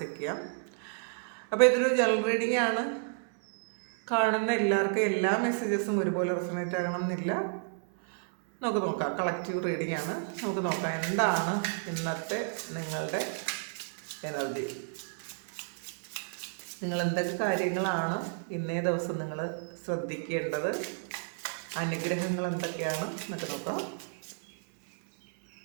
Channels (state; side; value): silent; left; 57 dB below the other